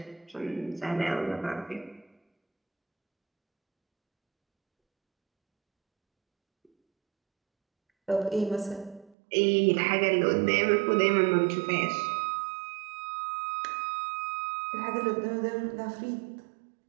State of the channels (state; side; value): drops out; left; at 9.2 s